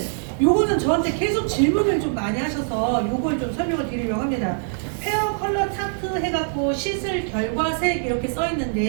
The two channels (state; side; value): silent; left; 63 dB below the other